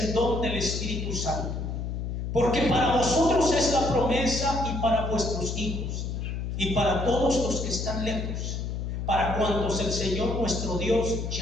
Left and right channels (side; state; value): left; noise; hum, 3 dB below the sound